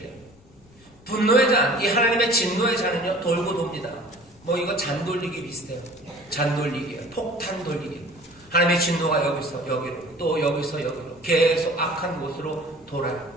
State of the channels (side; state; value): left; noise; rumble, 27 dB below the sound